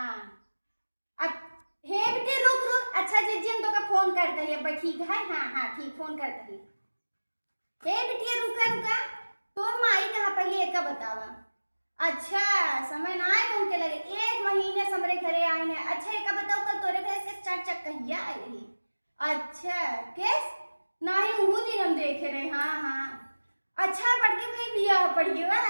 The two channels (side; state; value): both; inverted; correlation -1.00